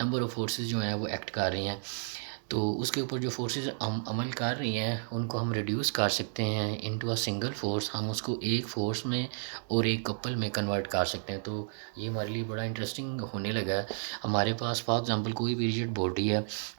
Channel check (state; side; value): silent; left; digital silence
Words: ऑफ फोर्सेस जो हैं वो एक्ट कर रही हैं। तो उसके ऊपर जो फोर्सेस हम अमल कर रही हैं उनको हम रिड्यूस कर सकते हैं इनटू अ सिंगल फोर्स। हम उसको एक फोर्स में और एक कपल में कन्वर्ट कर सकते हैं। तो ये हमारे लिए बड़ा इंटरेस्टिंग होने लगा है। हमारे पास फॉर एग्ज़ाम्पल कोई भी रिजिड बॉडी है।